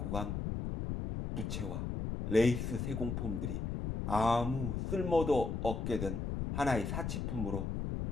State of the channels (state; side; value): noise; left; rumble, 2 dB below the sound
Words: 간 부채와 레이스 세공품들이 아무 쓸모도 없게 된 하나의 사치품으로